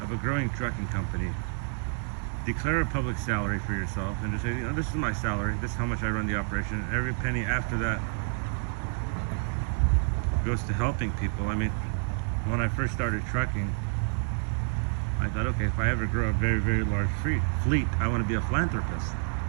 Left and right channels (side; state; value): left; silent; 56 dB below the other